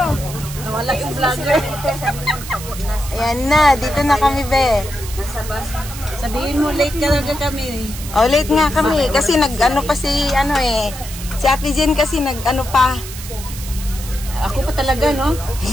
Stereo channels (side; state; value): right; noise; hiss, 12 dB below the sound